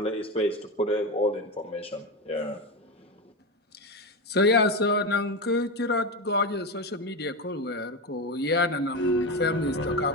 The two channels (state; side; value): normal; both; correlation 0.17